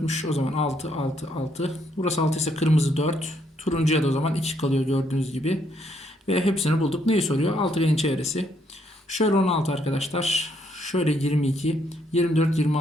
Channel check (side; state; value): both; normal; correlation 0.72